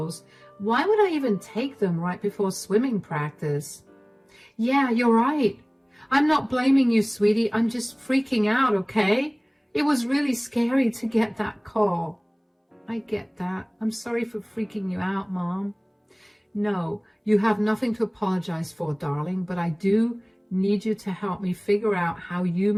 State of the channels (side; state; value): both; identical; correlation 1.00